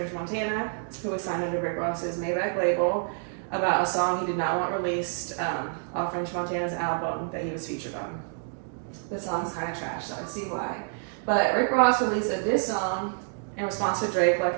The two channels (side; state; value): left; silent; 59 dB below the other